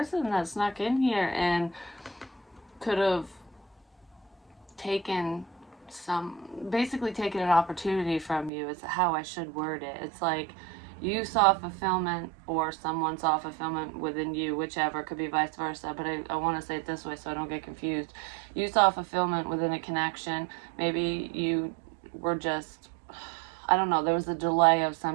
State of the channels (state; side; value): drops out; left; at 8.5 s